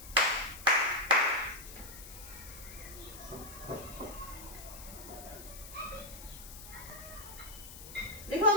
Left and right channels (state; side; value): noise; left; hiss, 14 dB below the sound